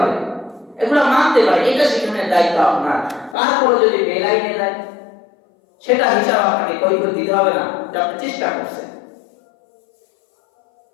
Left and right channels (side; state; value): right; drops out; at 3.4 s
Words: এগুলো মানতে পারে। এটা শিখানোর দায়িত্ব আপনার। তারপরে যদি বেলাইনে যায় সেটা হিসাব আপনাকে কৈফিয়ত দিতে হবে না, যে আপনি চেষ্টা করছেন।